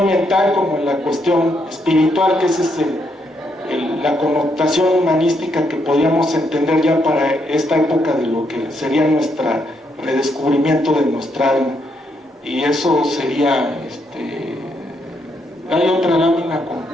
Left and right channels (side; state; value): both; normal; correlation 0.77